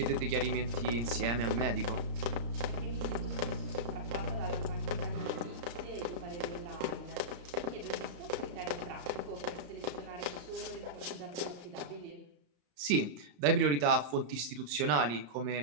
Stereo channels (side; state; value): left; late; 34 ms